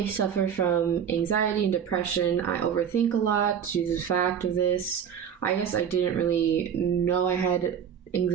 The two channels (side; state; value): left; quieter; 8.1 dB